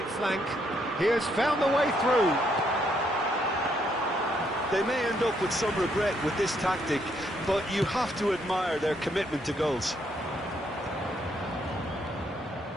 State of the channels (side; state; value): both; normal; correlation 0.73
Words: flank. He has found the way through. They may end up with some regret with this tactic, but you have to admire their commitment to goals.